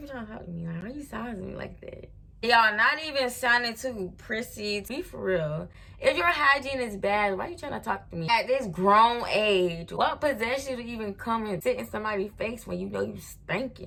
trying to talk to me? Like, why you sizing me like that? Y'all, not even sounding too prissy. Be for real. If your hygiene is bad, why you trying to talk to me? At this grown age, what possessed you to even come and sit in somebody's face when you know you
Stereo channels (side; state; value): both; identical; correlation 1.00